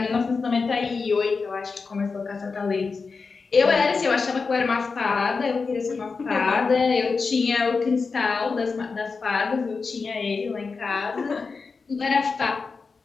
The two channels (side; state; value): right; quieter; 4.6 dB